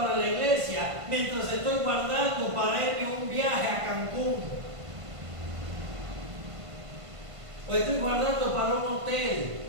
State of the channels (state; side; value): late; left; 1.5 ms